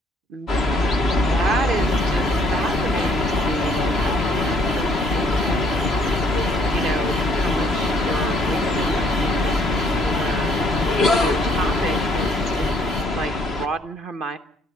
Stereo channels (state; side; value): normal; both; correlation 0.65